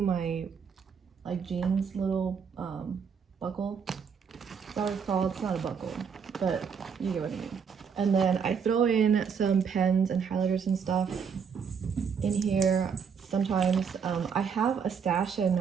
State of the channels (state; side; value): quieter; left; 6.6 dB